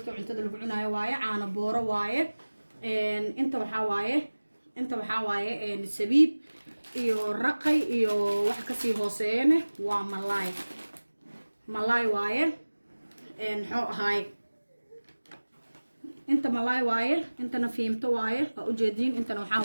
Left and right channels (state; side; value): inverted; both; correlation -1.00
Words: cuntada lagu cunaayo waaye caana booro waaye inta waxa waaye sabiib iyo raqay iyo wax ka sii hooseeyna waa malaay waaye xoo ahay inta malaay waaye intana fiimto waaye waa u jeedin intana waxa